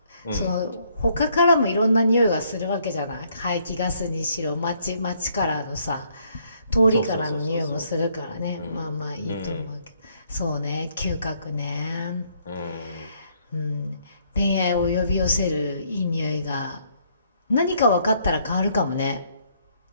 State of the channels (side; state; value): both; inverted; correlation -0.68